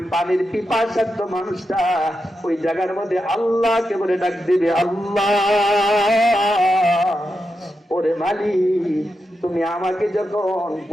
পানির পিপাসার্ত মানুষটা ওই জায়গার মধ্যে আল্লাহকে বলে ডাক দিবে, আল্লাহ, ওরে মালিক, তুমি আমাকে যখন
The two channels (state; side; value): normal; both; correlation 0.88